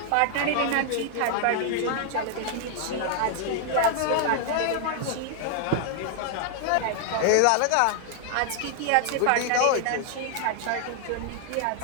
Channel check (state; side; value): different; both; correlation 0.00